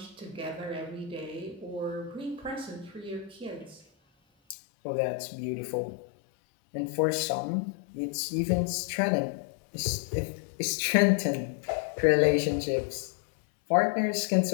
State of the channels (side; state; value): right; drops out; at 4.5 s